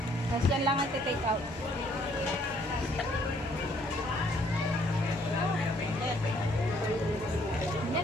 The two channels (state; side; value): normal; both; correlation 0.65